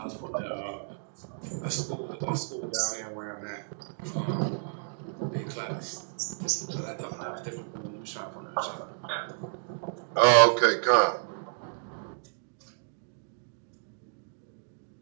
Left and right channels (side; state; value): left; silent; digital silence